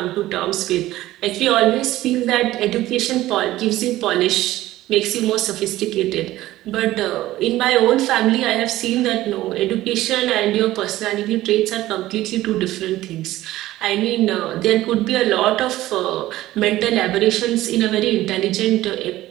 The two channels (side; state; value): left; quieter; 15.8 dB